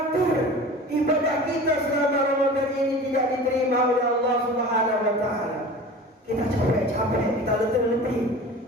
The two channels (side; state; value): both; normal; correlation 0.38